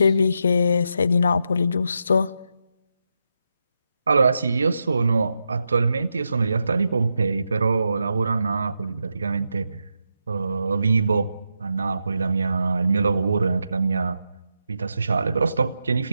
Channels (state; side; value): inverted; both; correlation -0.86